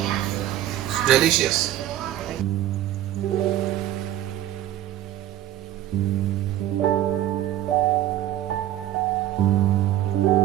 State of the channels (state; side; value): quieter; left; 12.9 dB